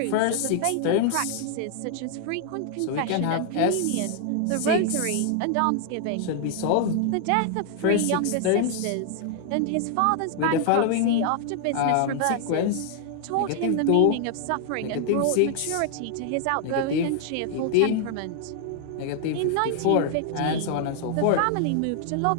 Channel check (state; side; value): different; both; correlation 0.00